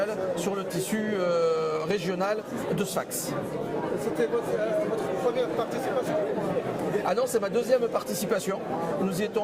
sur le tissu régional de Sfax. C'était votre première participation? Ah non, c'est ma deuxième participation. Nous y étions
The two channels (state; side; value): identical; both; correlation 1.00